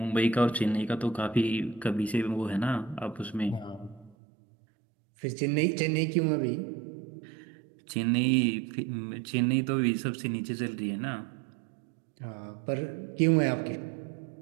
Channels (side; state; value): left; drops out; at 4.2 s